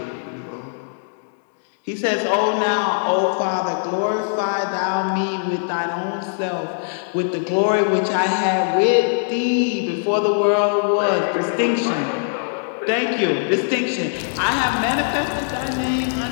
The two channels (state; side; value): silent; right; digital silence